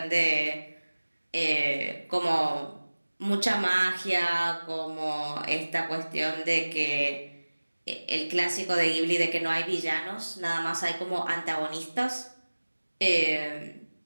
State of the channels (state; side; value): inverted; both; correlation -1.00